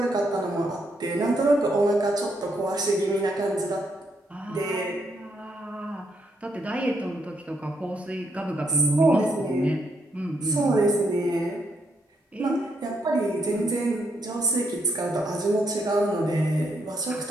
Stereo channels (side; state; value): both; normal; correlation 0.76